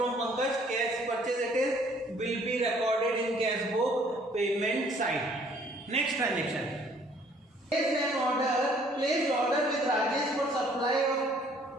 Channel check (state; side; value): normal; both; correlation 0.60